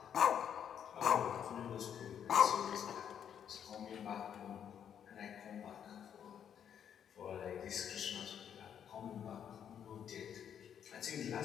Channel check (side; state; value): right; quieter; 8.8 dB